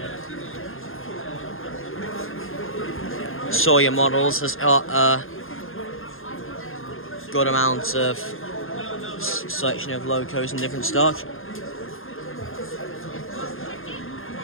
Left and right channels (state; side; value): late; right; 0.60 ms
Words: Sawyer Models has got a good amount of selection of locos and different stock.